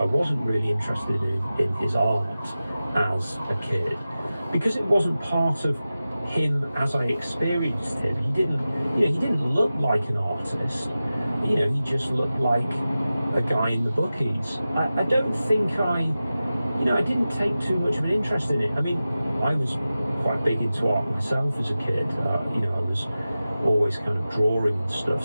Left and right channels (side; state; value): both; inverted; correlation -0.94